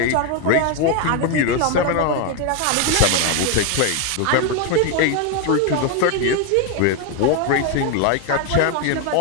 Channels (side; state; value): both; different; correlation 0.01